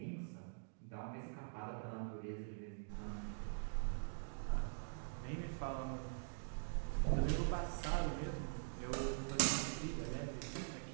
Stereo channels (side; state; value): left; silent; digital silence